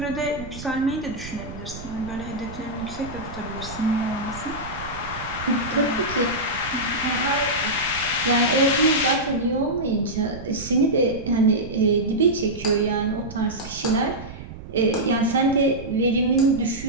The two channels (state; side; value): noise; right; rumble, 13 dB below the sound